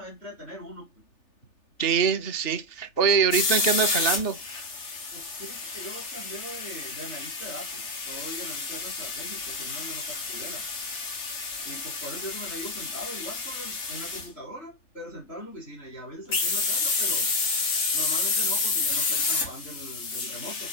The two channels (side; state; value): right; late; 3.4 ms